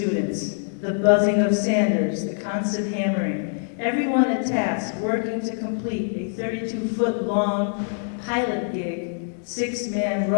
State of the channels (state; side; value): silent; right; digital silence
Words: the buzzing of sanders, the constant hammering, everyone at task working to complete a 32-foot long pilot gig 6-man